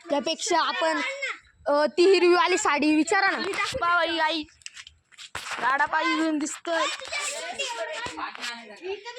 त्यापेक्षा आपण ती हिरवीवाली साडी विचारा ना. बाई आई गाडा पायी घेऊन दिसतोय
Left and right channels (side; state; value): both; identical; correlation 1.00